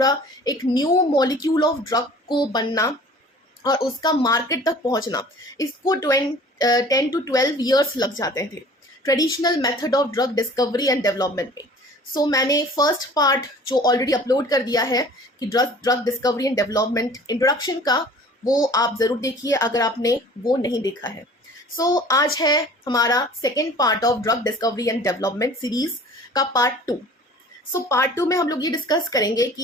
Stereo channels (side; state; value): both; normal; correlation 0.47